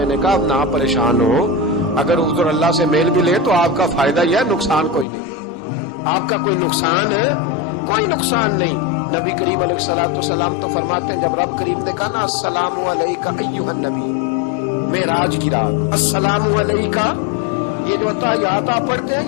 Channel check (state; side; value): drops out; right; at 5.1 s